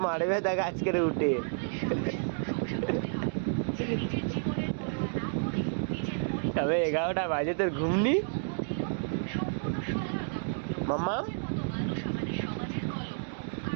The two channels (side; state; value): left; silent; digital silence